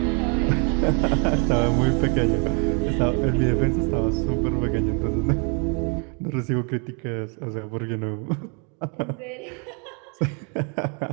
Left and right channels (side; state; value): left; quieter; 36.7 dB